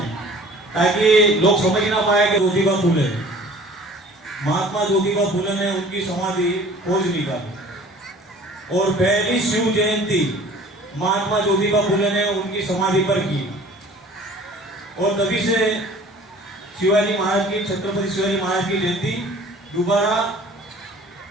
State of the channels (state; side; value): normal; both; correlation 0.48